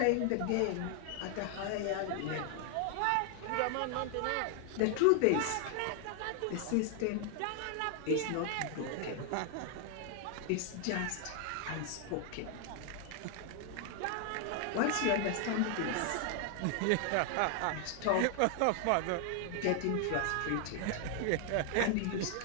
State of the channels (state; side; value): different; both; correlation 0.00